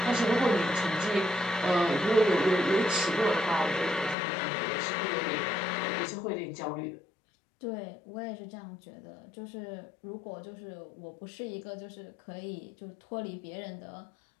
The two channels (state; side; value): drops out; right; at 4.2 s